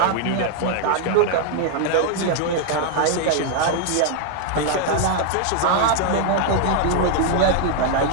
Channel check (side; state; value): both; different; correlation 0.00